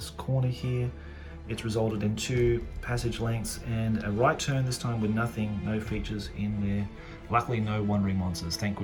corner here. It's resulted in 2 passage lengths and a right turn this time with nothing, no features in there. Luckily no wandering monsters, thank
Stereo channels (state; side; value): identical; both; correlation 1.00